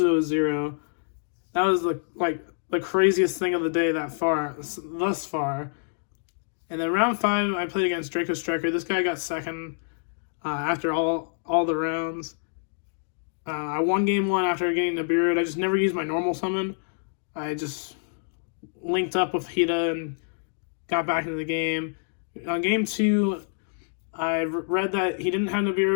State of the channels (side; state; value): right; silent; digital silence